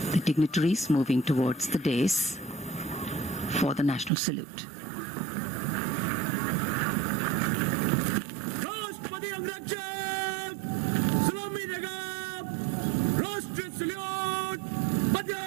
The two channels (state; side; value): drops out; left; at 4.1 s